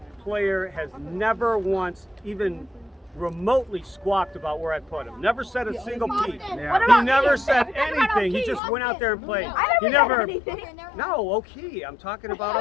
player has never once even remotely squawked about where I put him. Never said a single peep. Yeah. He never said anything. He just went out there and played. He never. No, Oki. I'm talking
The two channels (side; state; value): right; drops out; at 8.6 s